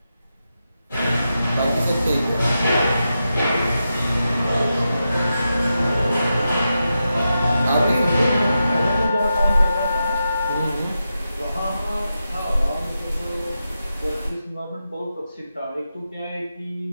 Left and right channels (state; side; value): inverted; both; correlation -0.88